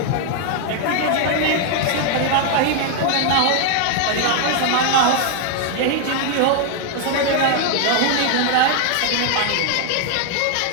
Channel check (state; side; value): different; both; correlation 0.00